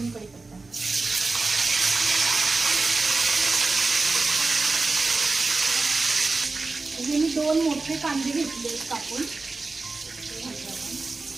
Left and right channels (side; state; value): left; quieter; 3.7 dB